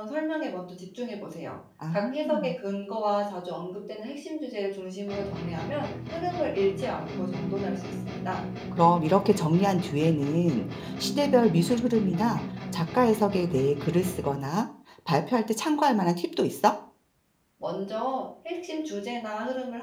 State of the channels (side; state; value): both; identical; correlation 1.00